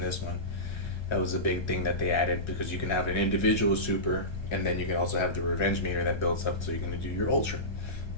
one. That was a big thing that they added, because you can have an individual super, and then you can also have the revenge meter that builds up so you can do your Ultra.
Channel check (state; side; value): late; right; 1.3 ms